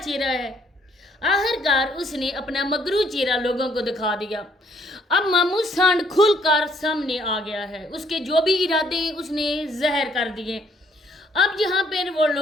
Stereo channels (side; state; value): both; normal; correlation 0.67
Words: है, आखिरकार उसने अपना मगरू चेहरा लोगों को दिखा दिया। अब मामूद सांड खुलकर सामने आ गया है। उसके जो भी इरादे उसने जहर कर दिए। अब यहाँ पर वो